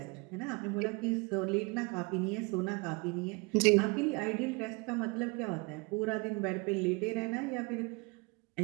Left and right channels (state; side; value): quieter; left; 28.9 dB